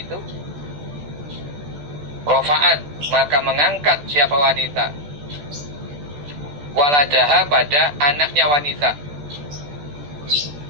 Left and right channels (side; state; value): left; late; 14 ms